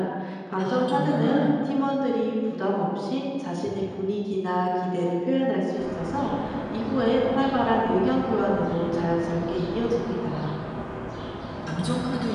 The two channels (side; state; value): both; identical; correlation 1.00